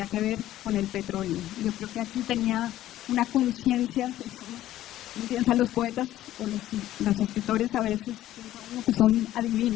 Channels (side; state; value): right; quieter; 13.7 dB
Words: que ver con el petróleo. Yo creo que aquí tenía una conciencia, digamos, uno piensa los poetas o los escritores a veces piensa uno que son